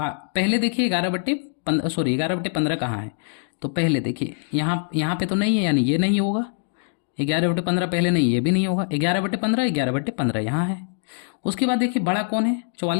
पहले देखिए 11/15 कहाँ है? तो पहले देखिए यहाँ पे तो नहीं है, यानी ये नहीं होगा। 11/15 पहले नहीं, ये भी नहीं होगा। 11/15, 11/15 यहाँ है। उसके बाद देखिए बड़ा कौन है?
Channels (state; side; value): silent; right; digital silence